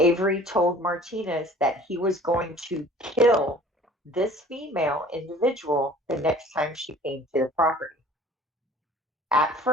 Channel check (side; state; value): both; normal; correlation 0.48